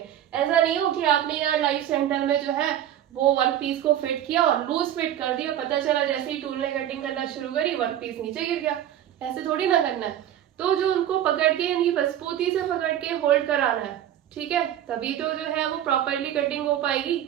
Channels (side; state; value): left; quieter; 11.3 dB